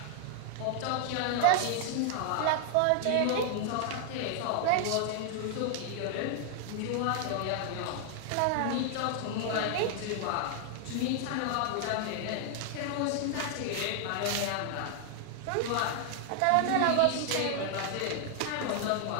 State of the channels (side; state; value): both; different; correlation 0.00